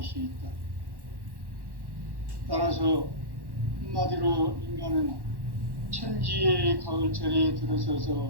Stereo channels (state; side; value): late; left; 1.1 ms